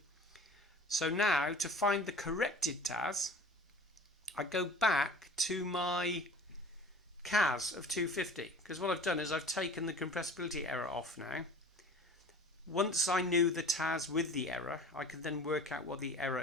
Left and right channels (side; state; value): both; normal; correlation 0.42